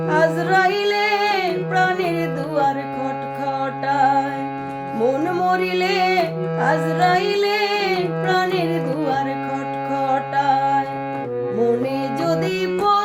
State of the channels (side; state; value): both; identical; correlation 1.00